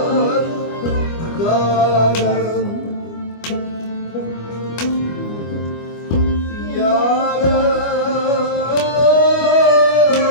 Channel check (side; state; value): right; late; 25 ms